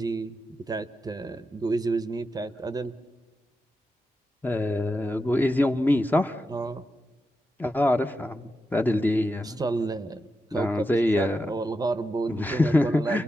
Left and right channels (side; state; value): both; normal; correlation 0.88